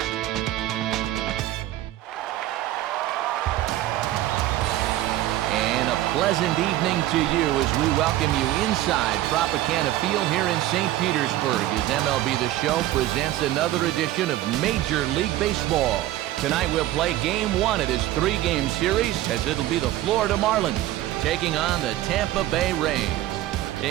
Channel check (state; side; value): quieter; left; 14.6 dB